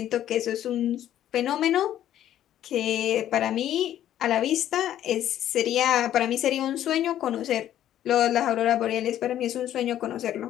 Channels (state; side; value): quieter; right; 11.7 dB